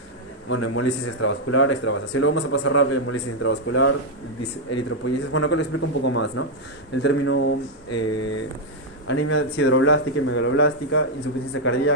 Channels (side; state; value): both; normal; correlation 0.00